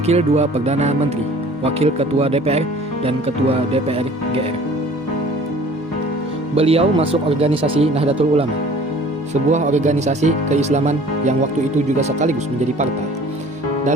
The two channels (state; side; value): normal; both; correlation 0.49